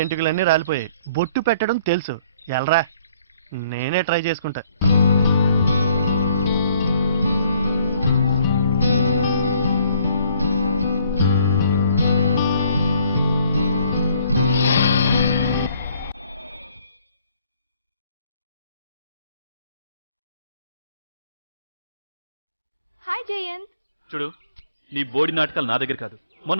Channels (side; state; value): both; inverted; correlation -0.62